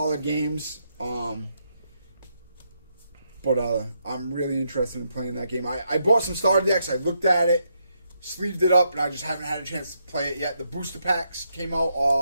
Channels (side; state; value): both; inverted; correlation -0.79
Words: games. But I'm really interested in playing that game. I bought some starter decks. I looked at it, sleeved it up, and I just haven't had a chance to play it yet. The booster packs came